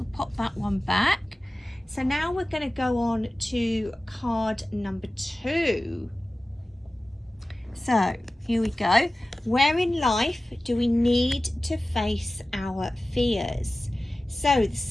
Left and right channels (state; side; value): normal; both; correlation 0.96